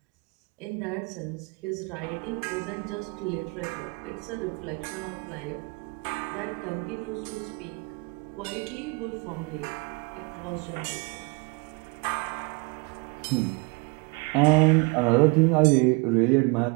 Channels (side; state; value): left; quieter; 30.3 dB